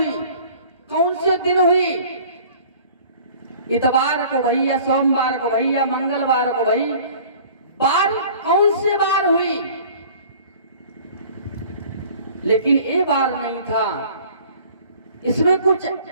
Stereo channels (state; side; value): inverted; both; correlation -0.49